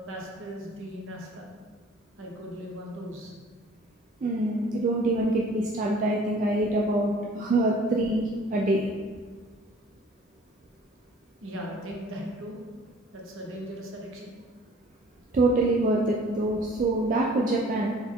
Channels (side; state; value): both; normal; correlation 0.52